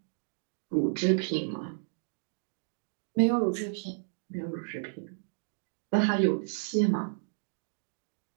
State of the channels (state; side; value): silent; left; digital silence